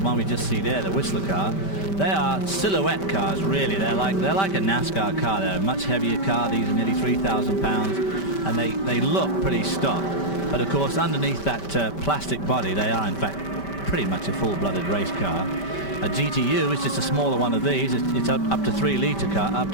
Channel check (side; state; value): right; late; 5.1 ms